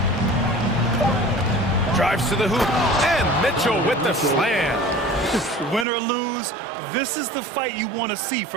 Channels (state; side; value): drops out; left; at 5.9 s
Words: Drives to the hoop, and Mitchell with the slam. Win or lose, this is the fight you want to see